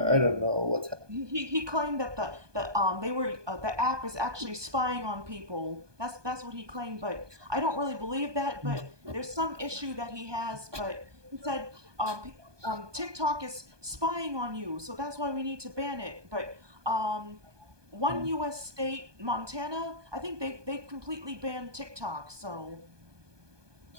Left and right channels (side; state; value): left; late; 1.2 ms